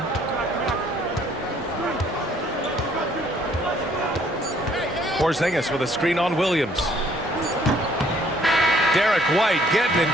Porzingis with a screen on Williams. Derek White getting it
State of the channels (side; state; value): both; normal; correlation 0.62